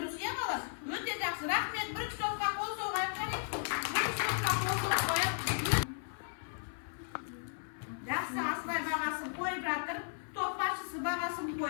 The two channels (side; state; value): right; silent; 54 dB below the other